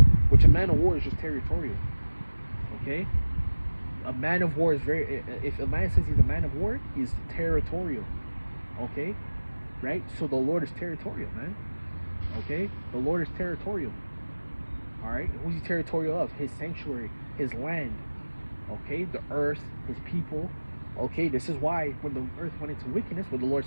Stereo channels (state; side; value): inverted; both; correlation -1.00